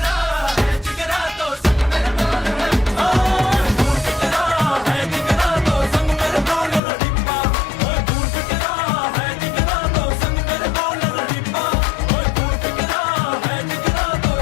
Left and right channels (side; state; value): right; drops out; at 6.8 s